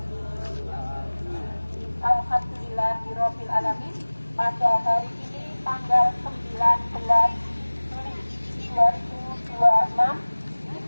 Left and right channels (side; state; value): both; inverted; correlation -1.00